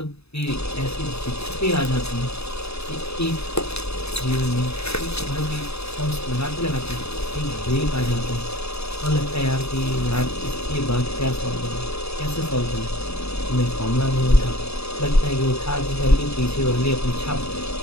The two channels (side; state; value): right; late; 0.79 ms